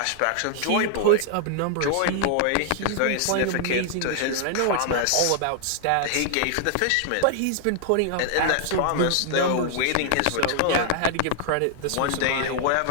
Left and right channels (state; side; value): different; both; correlation 0.00